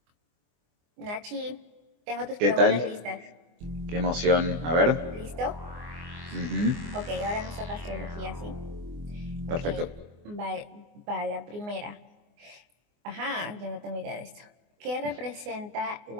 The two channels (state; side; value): late; left; 24 ms